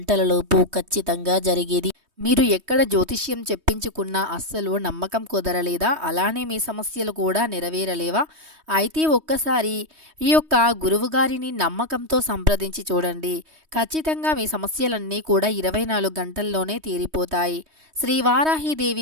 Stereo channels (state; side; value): late; left; 3.2 ms